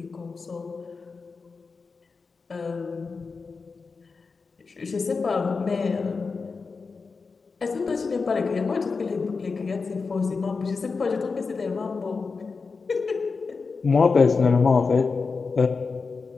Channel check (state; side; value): quieter; right; 4.6 dB